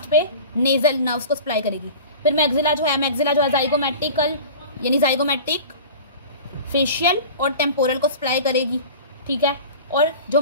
पे नेजल नर्व्स को सप्लाई करेगी। फिर मैक्सिला जो है जाइगोमैटिकल यानी जाइगोमैटिक फेशियल और टेम्पोरल को सप्लाई करेगी, ठीक है। और जो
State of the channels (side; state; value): both; inverted; correlation -0.37